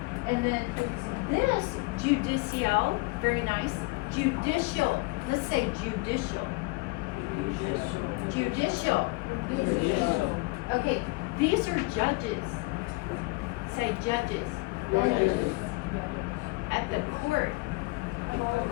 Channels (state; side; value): quieter; right; 25.3 dB